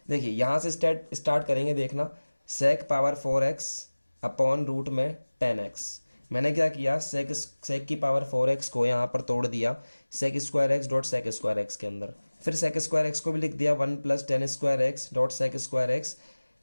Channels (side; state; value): both; inverted; correlation -1.00